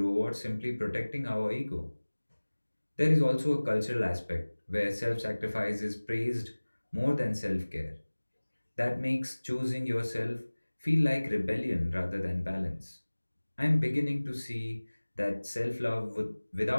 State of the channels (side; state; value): both; inverted; correlation -1.00